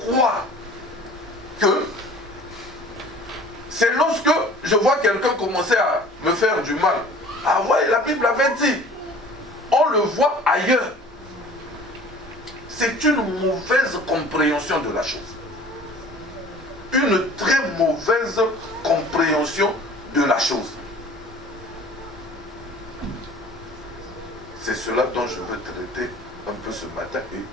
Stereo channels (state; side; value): normal; both; correlation 0.46